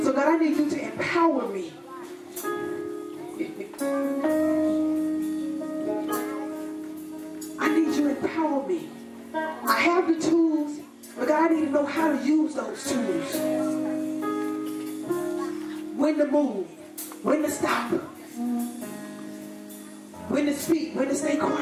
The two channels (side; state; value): both; identical; correlation 1.00